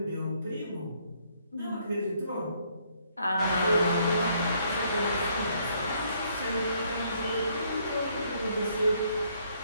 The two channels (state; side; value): inverted; both; correlation -0.69